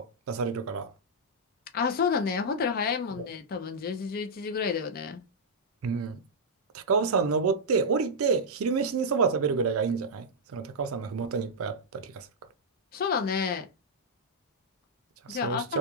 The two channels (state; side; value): normal; both; correlation -0.08